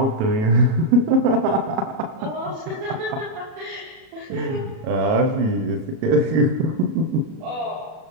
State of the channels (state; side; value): late; left; 37 ms